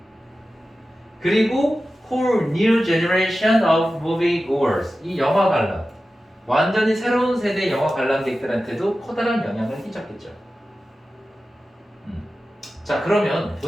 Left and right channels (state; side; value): normal; both; correlation 0.94